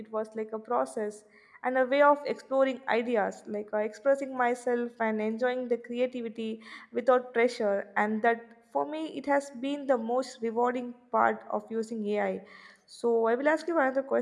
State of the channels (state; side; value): identical; both; correlation 1.00